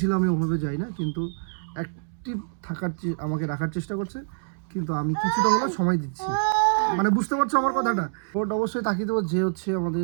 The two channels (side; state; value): left; silent; 61 dB below the other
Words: আমি ওভাবে যাই না, কিন্তু অ্যাক্টিভ আমাকে রাখার চেষ্টা করছে, কিন্তু আমি কিছুটা হলেও সময় দিচ্ছি। মানে বুঝতে পারছো আমার কথাটা? ভোট অবশ্যই তাকিয়ে দেবো যে হচ্ছে আমাদের